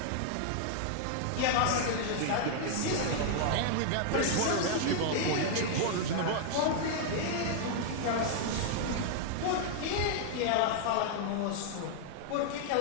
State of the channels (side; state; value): both; different; correlation 0.00